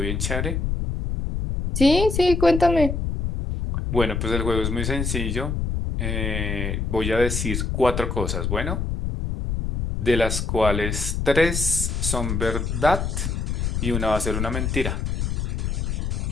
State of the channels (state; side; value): noise; left; rumble, 1 dB below the sound